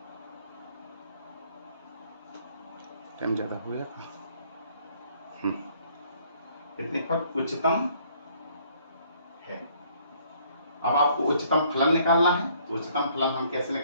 टाइम ज्यादा हो गया, इतने पर उच्चतम है। अब आपको उच्चतम फलन निकालना है, तो उच्चतम फलन हम कैसे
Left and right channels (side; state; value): both; inverted; correlation -0.62